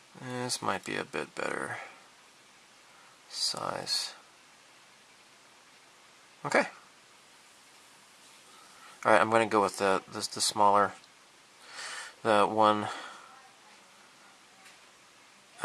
This might be a bit better size. Okay. Alright, I'm going to go with the smaller, the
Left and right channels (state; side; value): identical; both; correlation 1.00